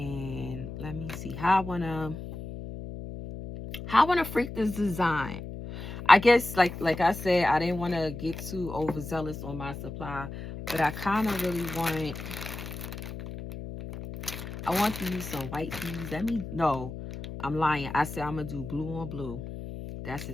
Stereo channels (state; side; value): noise; left; hum, 9 dB below the sound